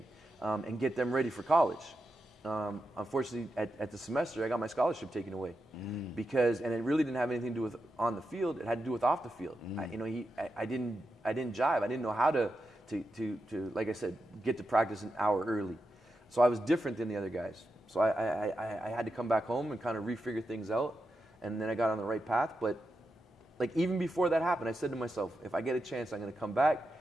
and get them ready for college. Unfortunately, at the semester, I got my scholarship taken away and it really didn't have anything to do with on the field. It had to do with off the field. I didn't jive. I didn't know how to like I said, get to practice an hour early. So I was different than the other guys. So I had to come back home and kind of refigure things out, and then I got on the right path. But like even before that happened, I said to myself, if I get a chance, I'm going to come back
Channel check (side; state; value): both; normal; correlation 0.88